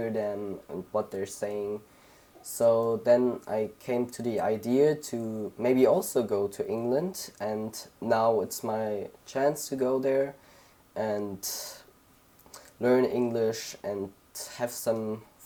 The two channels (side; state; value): both; identical; correlation 1.00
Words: them and what they're saying. So then I came to the idea to maybe also go to England, and now it's my chance to go there and learn English and have some